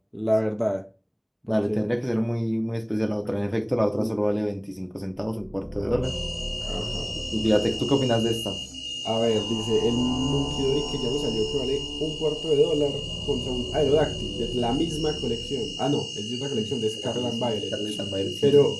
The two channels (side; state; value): both; identical; correlation 1.00